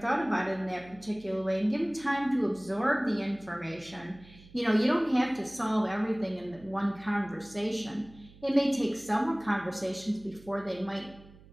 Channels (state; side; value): noise; right; hum, 22 dB below the sound